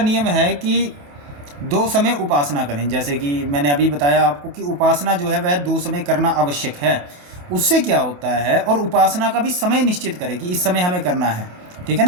है कि 2 समय उपासना करें, जैसे कि मैंने अभी बताया आपको कि उपासना जो है वह 2 समय करना आवश्यक है। उससे क्या होता है, और उपासना का भी समय निश्चित करें कि इस समय हमें करना है, ठीक है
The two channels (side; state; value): left; late; 28 ms